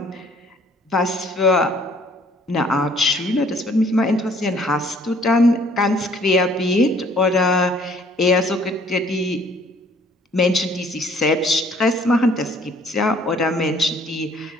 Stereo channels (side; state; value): both; normal; correlation 0.59